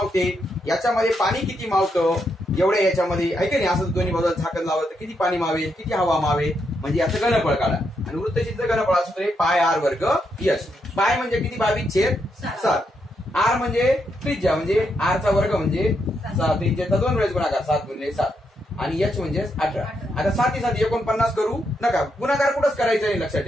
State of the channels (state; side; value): normal; both; correlation 0.80